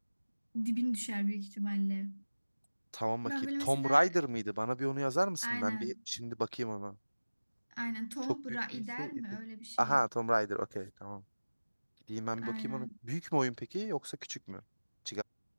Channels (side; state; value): both; inverted; correlation -1.00